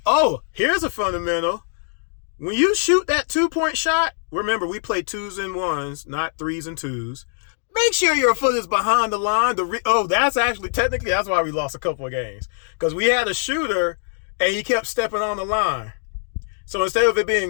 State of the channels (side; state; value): right; silent; digital silence